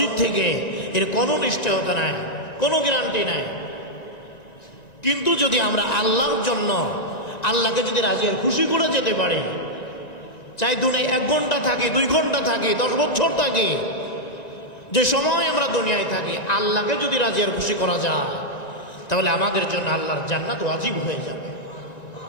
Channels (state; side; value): late; right; 1.9 ms